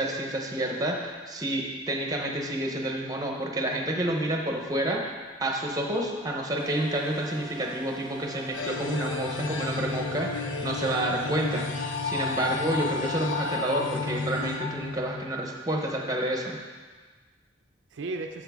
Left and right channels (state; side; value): normal; both; correlation 0.37